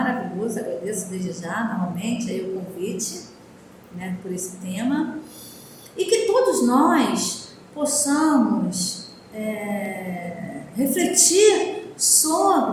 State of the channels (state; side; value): identical; both; correlation 1.00